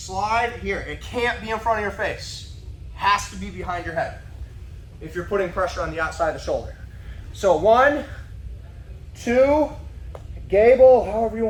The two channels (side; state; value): both; identical; correlation 1.00